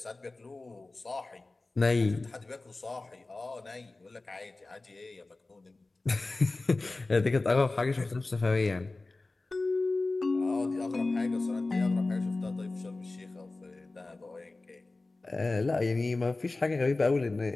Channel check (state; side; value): quieter; right; 3.2 dB